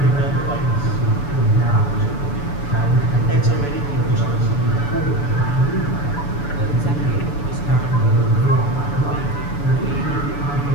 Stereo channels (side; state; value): right; late; 7.0 ms